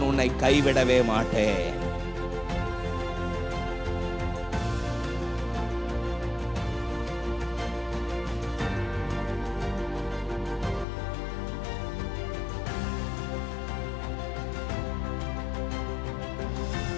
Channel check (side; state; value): right; drops out; at 10.9 s